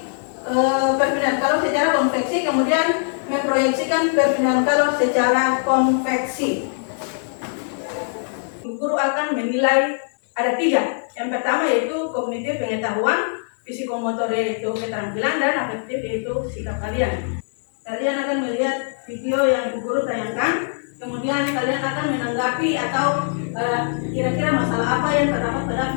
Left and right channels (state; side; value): silent; right; 64 dB below the other